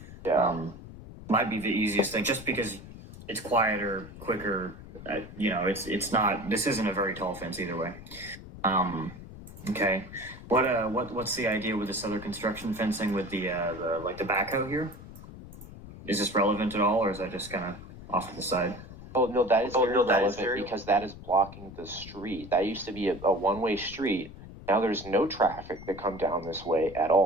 Yeah. Might be the easiest thing, just because it's quieter, quicker. It's not. This isn't a very tall fence either way. Okay. What's the idea with this other construction fencing with the backhoe here? Is this relevant at all, or is that just kind of off to the side? Oh no, that is very relevant because that is blocking the street. That used to be a one-way street. Now there's no traffic that come down this way at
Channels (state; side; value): noise; left; rumble, 15 dB below the sound